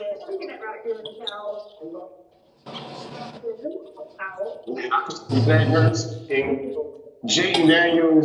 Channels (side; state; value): both; identical; correlation 1.00